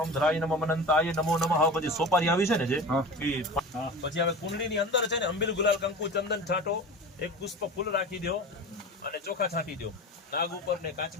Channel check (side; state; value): both; normal; correlation 0.33